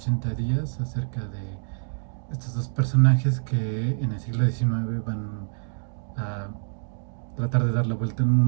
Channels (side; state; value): left; silent; digital silence